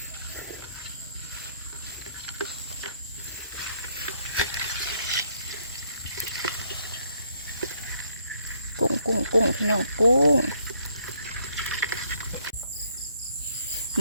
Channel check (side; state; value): both; inverted; correlation -0.69